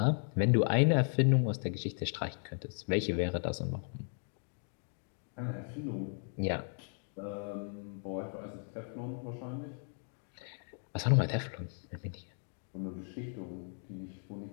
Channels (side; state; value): right; silent; 54 dB below the other